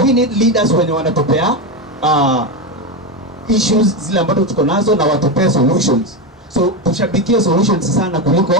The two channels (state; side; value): normal; both; correlation 0.13